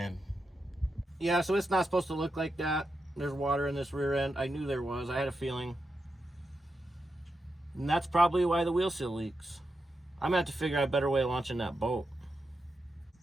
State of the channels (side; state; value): both; normal; correlation 0.87